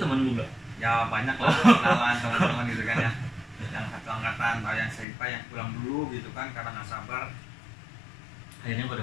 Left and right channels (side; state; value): right; drops out; at 5.1 s